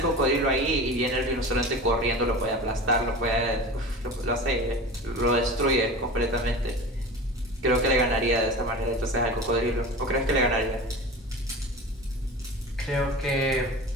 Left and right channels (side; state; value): both; normal; correlation 0.33